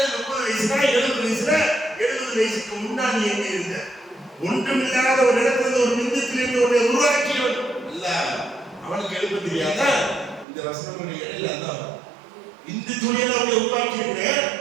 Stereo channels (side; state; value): left; drops out; at 10.5 s